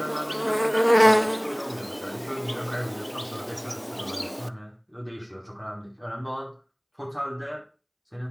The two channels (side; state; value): both; identical; correlation 1.00